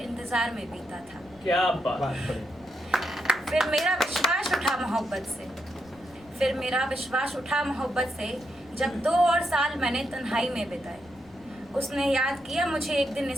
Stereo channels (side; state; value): left; noise; rumble, 26 dB below the sound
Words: में बीता था। क्या बात। फिर मेरा विश्वास उठा मोहब्बत से जब 2 और साल मैंने तन्हाई में बिताए। उसने याद किया मुझे एक दिन